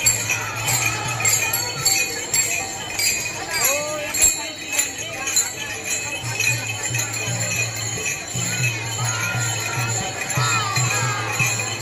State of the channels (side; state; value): both; identical; correlation 1.00